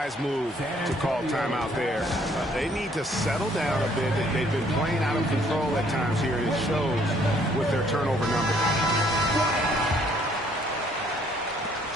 move to call timeout there. They need to settle down a bit. They've been playing out of control at times here. It shows with their turnover numbers.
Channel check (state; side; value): normal; both; correlation 0.63